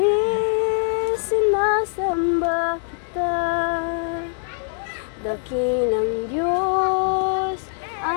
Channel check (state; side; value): silent; right; 64 dB below the other